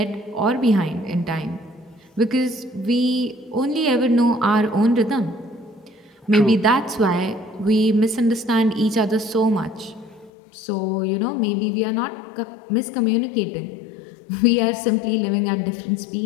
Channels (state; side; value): drops out; right; at 10.3 s